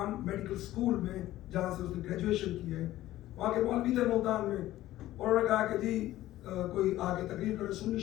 میڈیکل اسکول میں جہاں سے اس نے گریجویشن کی ہے, وہاں کے مولوی تھے ملتان میں, انہوں نے کہا کہ جی کوئی آگے تقریر کرے, سنی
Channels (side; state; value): right; quieter; 15.0 dB